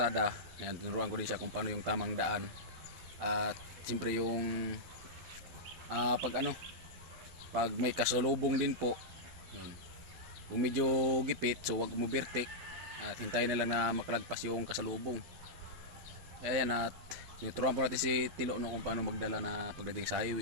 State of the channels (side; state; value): left; late; 12 ms